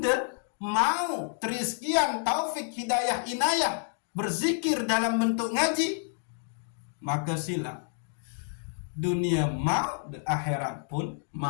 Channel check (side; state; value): right; silent; digital silence